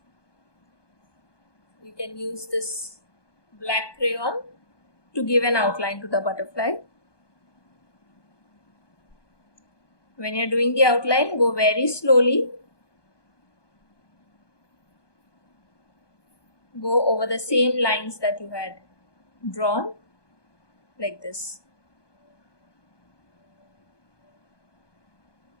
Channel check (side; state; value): right; late; 1.2 ms